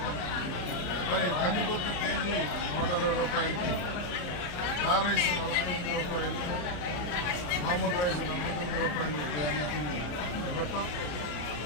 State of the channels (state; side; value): late; right; 34 ms